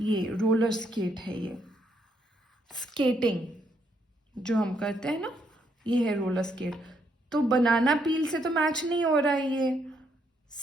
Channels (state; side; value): normal; both; correlation 0.74